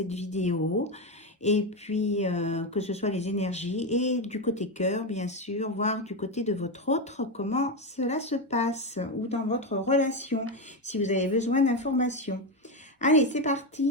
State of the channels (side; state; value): both; normal; correlation 0.11